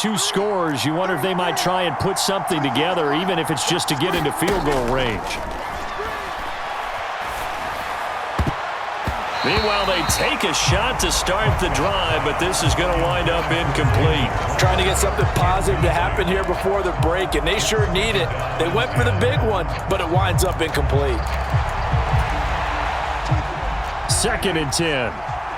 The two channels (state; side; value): identical; both; correlation 1.00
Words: scores, you wonder if they might try and put something together, even if it's just to get into field goal range. Meanwhile, they take a shot to start the drive, but this is going to wind up incomplete. Trying to get something positive to happen here before the break, and they sure need it. They went for the big one, but it winds up incomplete. 2nd and 10.